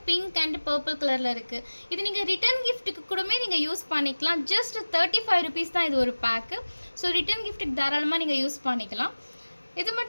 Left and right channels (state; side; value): inverted; both; correlation -1.00